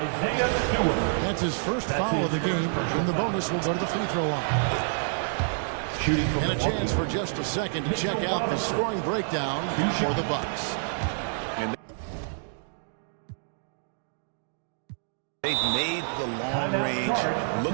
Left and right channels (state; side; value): silent; left; digital silence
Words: Stewart. That's his first foul of the game. And the bonus will go to the free throw line. And a chance for just a second to check out the scoring breakdown for the Bucks. They've made the long range